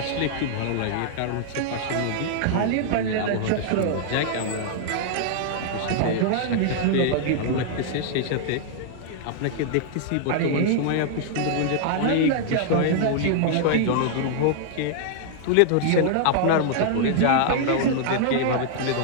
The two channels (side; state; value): both; different; correlation -0.01